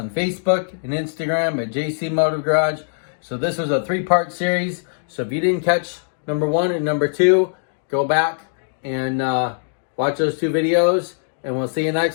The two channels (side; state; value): right; silent; digital silence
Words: Facebook and Instagram at JC Motor Garage. So this was a 3-part series. So if you didn't catch number 1 and number 2, go back and watch those 2 videos. And we'll see you